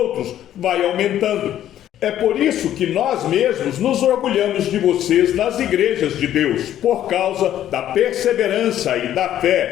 vai aumentando. É por isso que nós mesmos nos orgulhamos de vocês nas igrejas de Deus, por causa da perseverança e da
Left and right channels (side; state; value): right; quieter; 11.7 dB